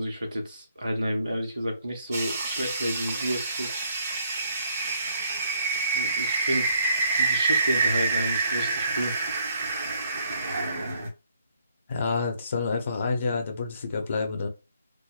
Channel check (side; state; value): both; inverted; correlation -0.69